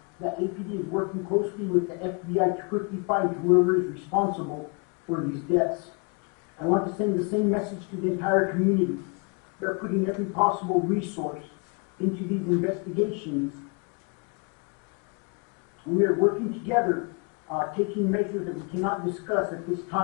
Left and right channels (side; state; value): right; quieter; 34.1 dB